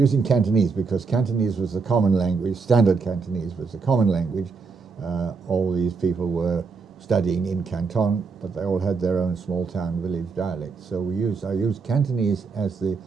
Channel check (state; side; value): quieter; left; 4.8 dB